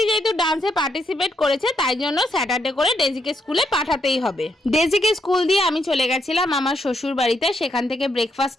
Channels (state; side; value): normal; both; correlation 0.78